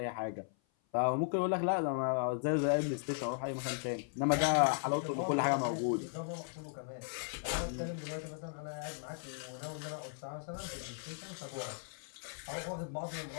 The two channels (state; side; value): silent; right; 53 dB below the other